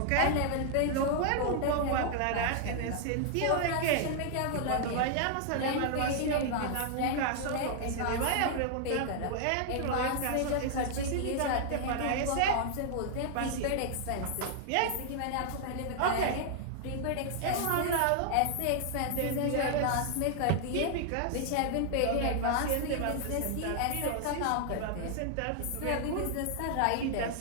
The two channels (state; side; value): different; both; correlation 0.00